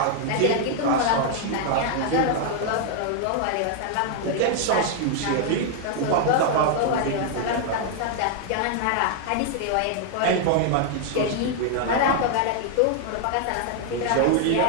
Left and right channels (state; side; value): different; both; correlation 0.00